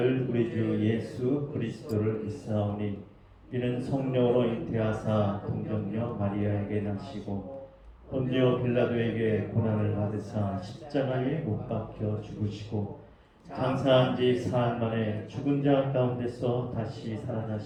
우리 주 예수 그리스도를 믿사오니 이는 성령으로 잉태하사 동정녀 마리아에게 나시고 본디오 빌라도에게 고난을 받으사 십자가에 못 박혀 죽으시고 장사한 지 사흘 만에 죽은 자 가운데서 다시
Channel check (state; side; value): identical; both; correlation 1.00